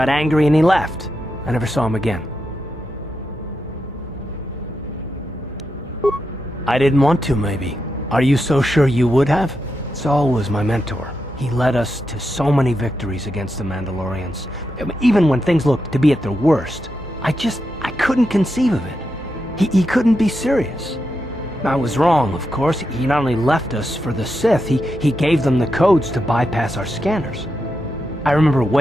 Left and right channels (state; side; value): normal; both; correlation 0.86